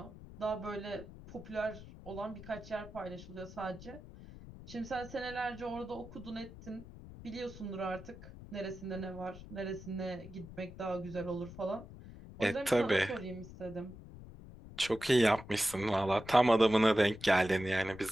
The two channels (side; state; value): left; noise; rumble, 15 dB below the sound